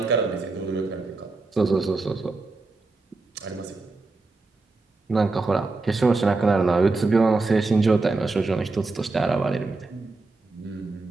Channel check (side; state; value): left; quieter; 3.5 dB